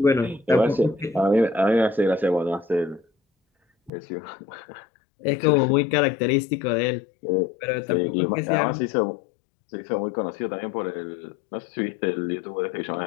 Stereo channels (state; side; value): drops out; right; at 3.9 s